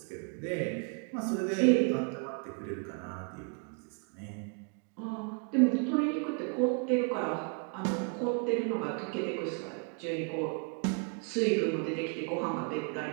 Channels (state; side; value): quieter; left; 38.2 dB